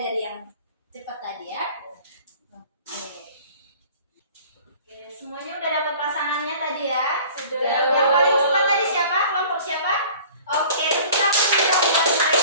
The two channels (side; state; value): both; inverted; correlation -0.47